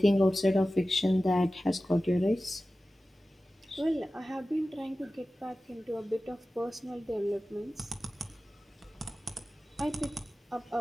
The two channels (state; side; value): normal; both; correlation 0.95